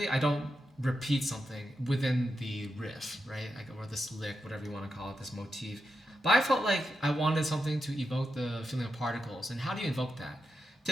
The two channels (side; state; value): both; normal; correlation 0.87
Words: I don't repeat something within the riff, right? Or this lick, whatever you want to call it, this motif. But I felt like I wanted something to evoke the feeling of particles. And how do you invoke that?